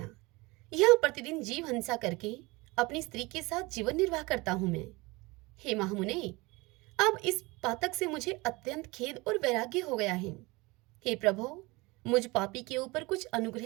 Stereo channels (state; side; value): quieter; left; 23.8 dB